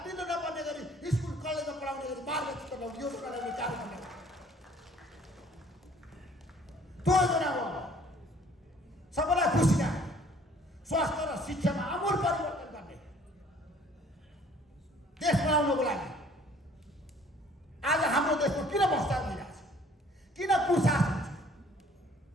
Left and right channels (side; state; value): both; normal; correlation 0.56